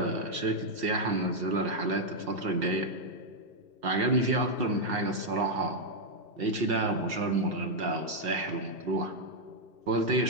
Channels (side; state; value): left; late; 2.7 ms